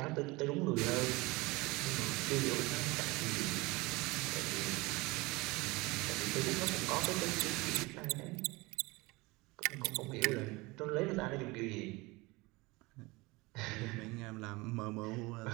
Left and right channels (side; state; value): left; quieter; 23.4 dB